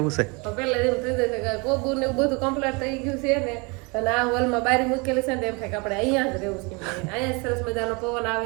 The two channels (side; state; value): left; quieter; 29.4 dB